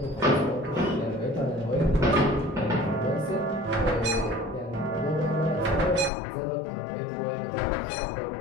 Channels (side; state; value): right; drops out; at 6.1 s